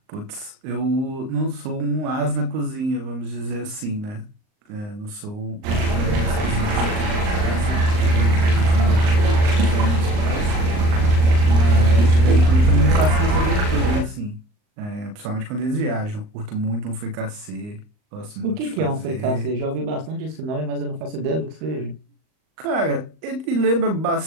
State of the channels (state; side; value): late; left; 38 ms